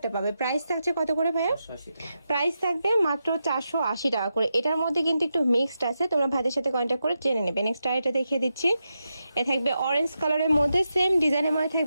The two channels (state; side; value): inverted; both; correlation -0.87